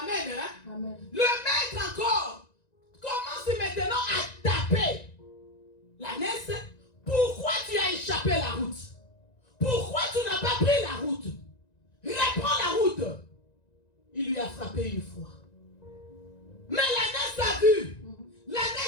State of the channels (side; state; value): right; late; 1.9 ms